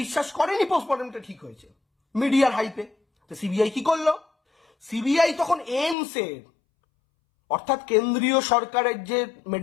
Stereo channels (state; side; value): drops out; right; at 6.0 s